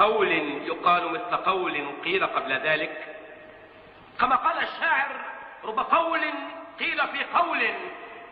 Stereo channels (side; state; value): both; identical; correlation 1.00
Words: يقال مثل قول قيل قبل ذلك؟ كما قال الشاعر: رب قول قيل في قول